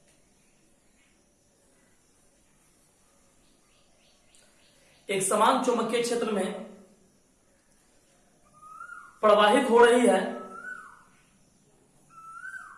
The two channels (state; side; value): identical; both; correlation 1.00